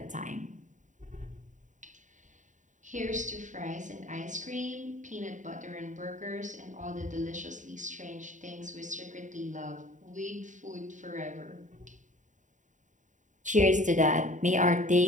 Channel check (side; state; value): left; late; 0.36 ms